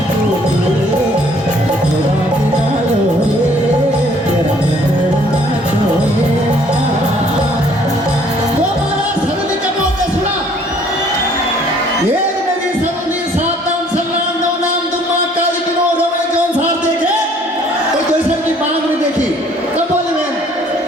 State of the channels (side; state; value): both; normal; correlation 0.59